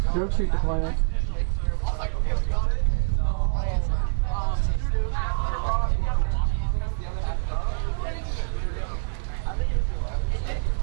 drogue chute deployment.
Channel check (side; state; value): left; silent; 61 dB below the other